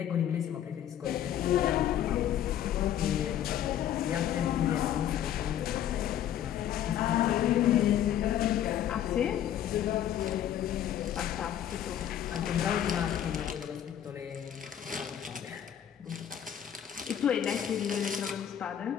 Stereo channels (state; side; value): quieter; right; 10.5 dB